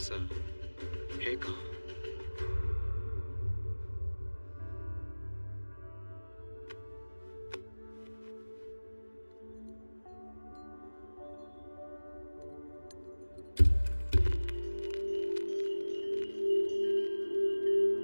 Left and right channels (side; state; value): both; inverted; correlation -1.00